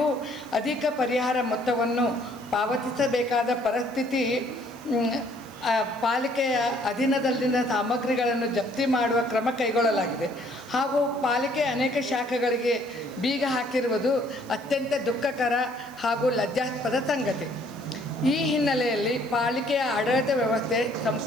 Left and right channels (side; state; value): right; noise; hiss, 25 dB below the sound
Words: ಅಧಿಕ ಪರಿಹಾರ ಮೊತ್ತವನ್ನು ಪಾವತಿಸಬೇಕಾದ ಪರಿಸ್ಥಿತಿ, ಪಾಲಿಕೆಯ ಅಧೀನದಲ್ಲಿನ ಸಾಮಗ್ರಿಗಳನ್ನು ಜಪ್ತಿ ಮಾಡುವ ಕ್ರಮ ಕೈಗೊಳ್ಳಲಾಗಿದೆ ಹಾಗೂ ಪಾಲಿಕೆಯ ಅನೇಕ ಶಾಖೆಗಳಿಗೆ ಬೀಗ ಹಾಕಿರುವುದು ಅತ್ಯಂತ ದುಃಖಕರ ಹಾಗೂ ಲಜ್ಜಾಸ್ಪದ ಸಂಗತಿ. ಈ ಹಿನ್ನೆಲೆಯಲ್ಲಿ ಪಾಲಿಕೆಯ ಆಡಳಿತ ವ್ಯವಸ್ಥೆ